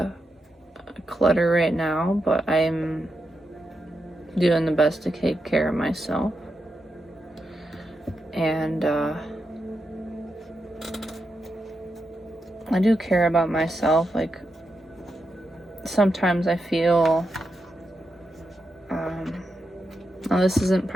clutter right now, but I'm doing the best to take care of myself. And I do care about myself. Like sometimes I feel now this isn't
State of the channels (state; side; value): normal; both; correlation 0.86